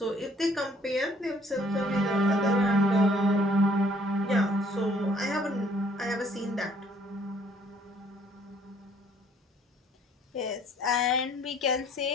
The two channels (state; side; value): normal; both; correlation 0.61